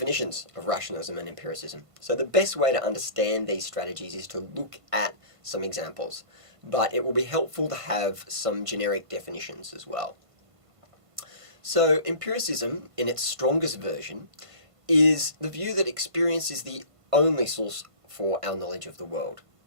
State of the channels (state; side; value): late; left; 1.5 ms